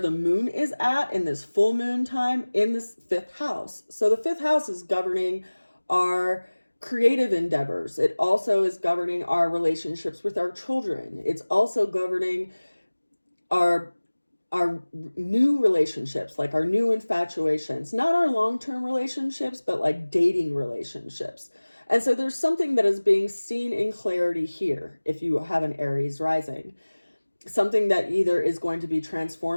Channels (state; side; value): inverted; both; correlation -1.00